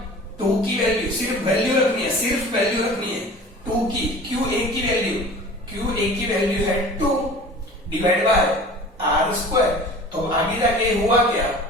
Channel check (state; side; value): normal; both; correlation 0.41